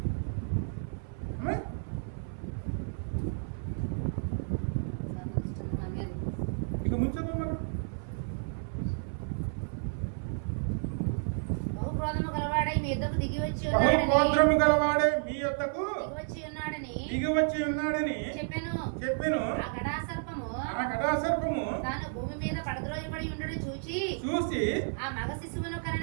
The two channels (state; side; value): silent; left; 55 dB below the other